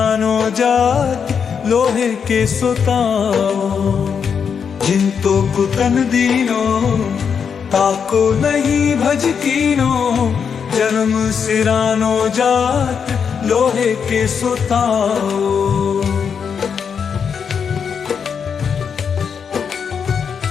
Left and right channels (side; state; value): right; quieter; 6.7 dB